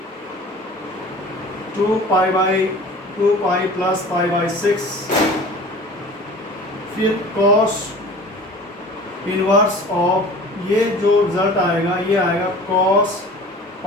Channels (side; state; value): both; normal; correlation 0.42